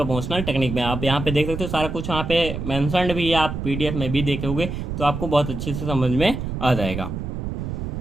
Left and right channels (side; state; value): right; noise; rumble, 5 dB below the sound